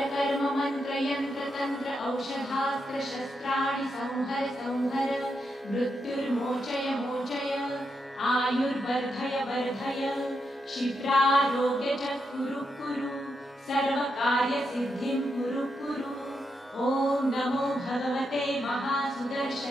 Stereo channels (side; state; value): both; normal; correlation 0.83